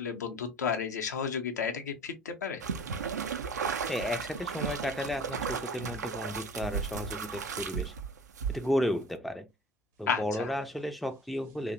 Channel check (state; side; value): normal; both; correlation 0.42